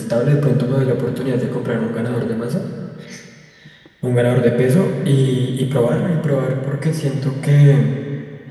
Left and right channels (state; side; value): identical; both; correlation 1.00